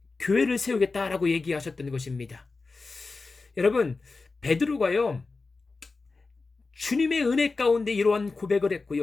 교회를 세우겠다라고 얘기하셨던 것입니다. 여러분, 베드로가요, 주님의 은혜 가운데 이러한 고백을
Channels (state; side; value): quieter; right; 3.9 dB